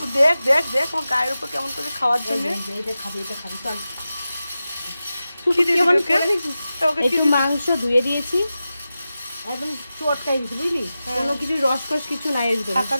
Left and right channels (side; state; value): both; inverted; correlation -0.94